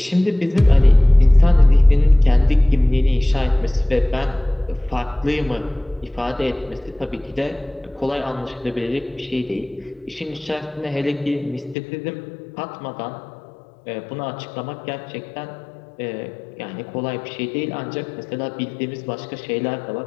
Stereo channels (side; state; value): right; drops out; at 11.8 s